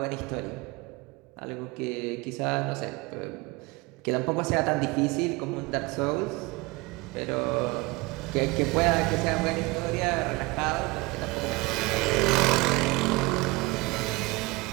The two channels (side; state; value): left; quieter; 23.4 dB